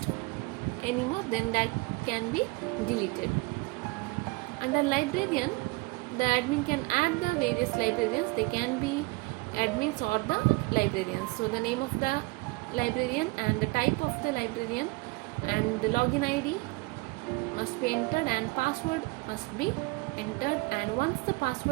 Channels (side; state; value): left; quieter; 25.6 dB